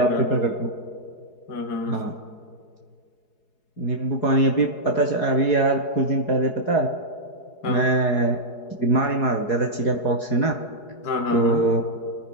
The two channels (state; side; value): late; right; 4.8 ms